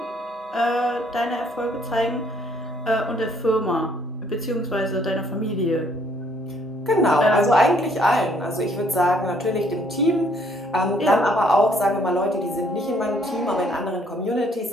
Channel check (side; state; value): both; normal; correlation 0.65